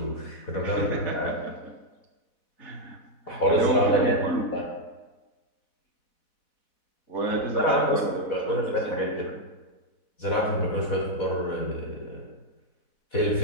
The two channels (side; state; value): right; late; 4.1 ms